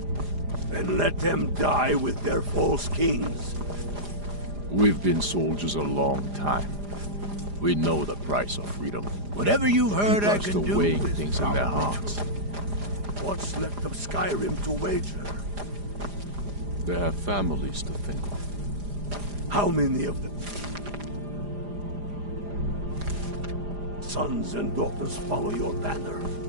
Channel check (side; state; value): left; late; 4.9 ms